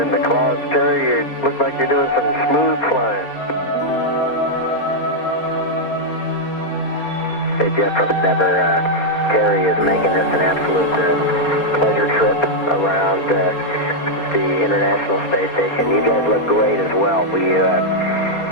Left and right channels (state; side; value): late; right; 4.3 ms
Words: the clouds, Terry, you look like you're doing some smooth flying. Hey Jeff from Endeavour, Terry is making this an absolute pleasure trip around the International Space Station. You guys look great as well. We